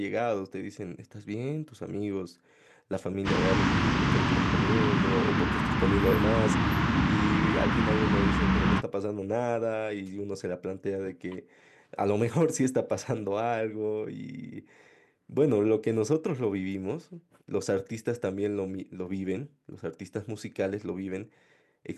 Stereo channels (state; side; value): identical; both; correlation 1.00